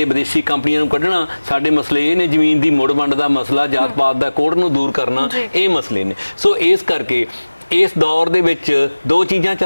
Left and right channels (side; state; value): both; inverted; correlation -1.00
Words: ਵਿਦੇਸ਼ੀ ਕੰਪਨੀਆਂ ਨੂੰ ਕੱਢਣਾ, ਸਾਡੇ ਮਸਲੇ ਇਹ ਨੇ, ਜ਼ਮੀਨ ਦੀ ਮੁੜ ਵੰਡ ਦਾ ਮਸਲਾ, ਜਾਤ ਪਾਤ ਦਾ ਕੋੜ ਨੂੰ ਦੂਰ ਕਰਨਾ, ਇਹ ਮਸਲੇ ਨੇ। ਸੋ ਇਸ ਕਰਕੇ ਇਸ ਦੌਰ ਦੇ ਵਿੱਚ ਦੋ ਚੀਜ਼ਾਂ